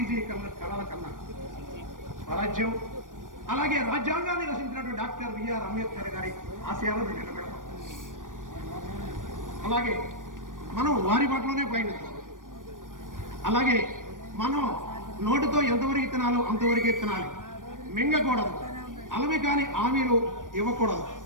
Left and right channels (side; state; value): left; late; 0.88 ms